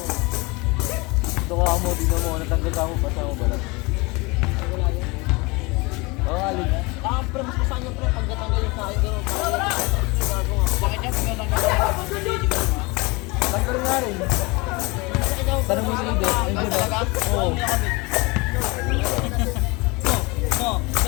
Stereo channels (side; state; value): right; quieter; 25.8 dB